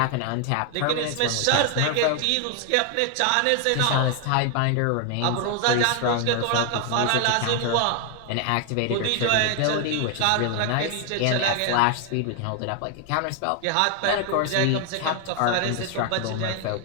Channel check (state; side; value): different; both; correlation 0.00